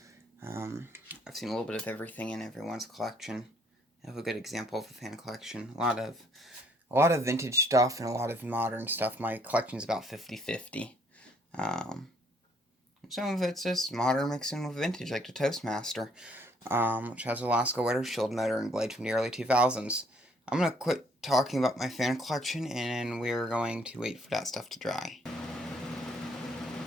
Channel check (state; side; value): normal; both; correlation 0.65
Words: I've seen a little bit of everything in everyone's collection. I have a good example of a fan collection. A lot of vintage stuff and a lot of modern stuff. My collection is about 50-50. Some of it's just modern mixed in with vintage, like the Toastmaster, which has a Lasko Weather Shield motor and blade from the early 2000s. I'm going to quit talking about my fan collection, and we're going to wait for that stuff to dry.